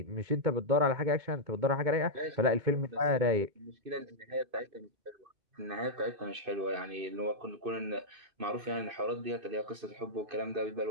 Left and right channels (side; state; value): left; late; 2.5 ms